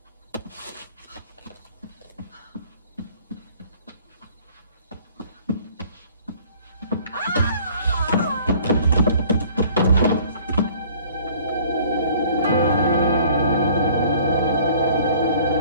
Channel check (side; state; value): both; inverted; correlation -0.54